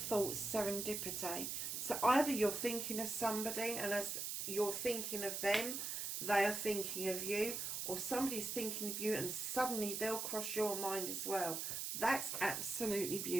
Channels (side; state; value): right; noise; hiss, 3 dB below the sound